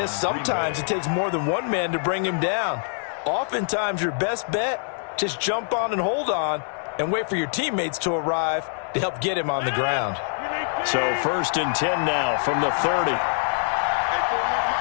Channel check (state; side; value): silent; right; digital silence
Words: sometimes it takes more than one man to bring him down. Oftentimes, your best bet, just jump on and hold on and wait for your teammates to arrive to help get him on the ground. So 1st and 10 now from the 30.